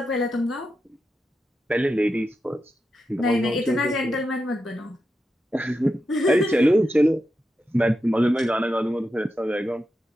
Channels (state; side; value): normal; both; correlation 0.88